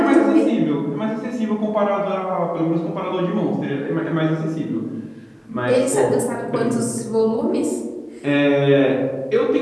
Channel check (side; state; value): both; identical; correlation 1.00